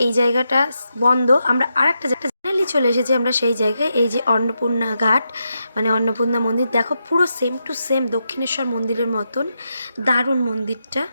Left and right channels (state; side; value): inverted; both; correlation -0.85